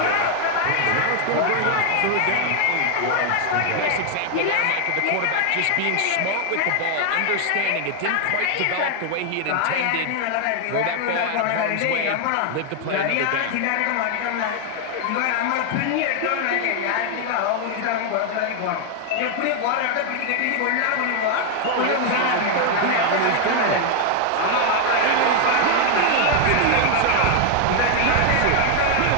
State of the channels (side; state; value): both; different; correlation 0.00